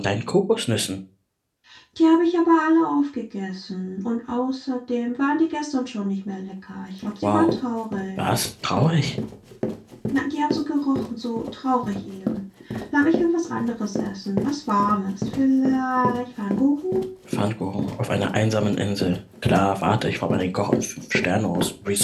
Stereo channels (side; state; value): both; identical; correlation 1.00